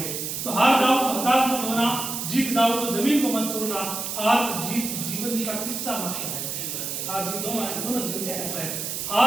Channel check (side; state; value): right; noise; hiss, 4 dB below the sound